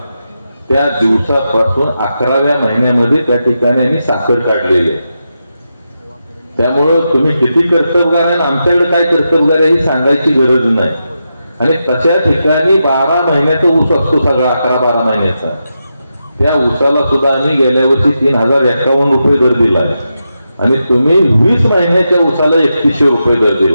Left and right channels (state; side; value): inverted; both; correlation -0.87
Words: त्या दिवसापासून 11व्या महिन्यामध्ये त्या ठिकाणी आम्ही साखर काढलेली. त्यामुळं तुम्ही किती कर्तबगार आहे, आमच्याकडे काय कर्तबगार आहे ही सांगायची गरज नाही. आणि तशा ठिकाणी 12 महिन्याचा ऊस असतो सगळा, 11-12 महिन्याचा. त्या ऊसाला सुद्धा आम्ही गेल्या वर्षी 3051 रुपये दर दिला आहे. आणि तुम्ही 20 महिन्याच्या ऊसाला 3100 रुपये दर